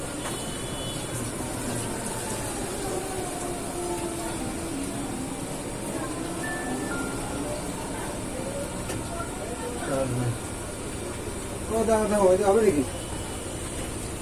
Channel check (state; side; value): identical; both; correlation 1.00